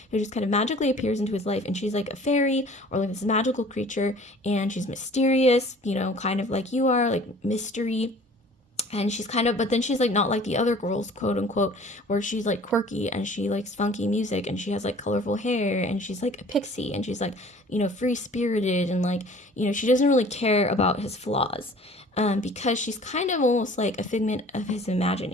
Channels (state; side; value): normal; both; correlation 0.49